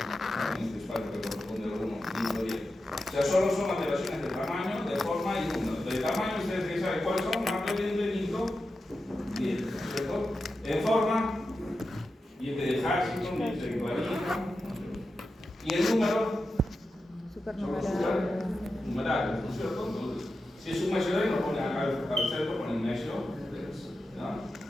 en este espacio que corresponde a la 1, microdiente. O sea, solo son alteraciones de tamaño, de forma y número. De tamaño, ustedes tienen que saber cuáles son, macrodiente, microdiente, ¿cierto? En forma, diente de Hutchinson, diente de Clarita, y el número, numerarios, ¿no es cierto? Entonces, si es un medio de lo ponen acá al centro, ponen medio, ¿no?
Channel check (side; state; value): both; normal; correlation 0.91